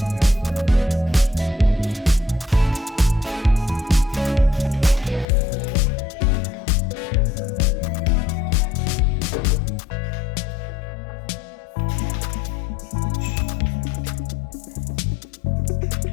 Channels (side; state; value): right; drops out; at 5.2 s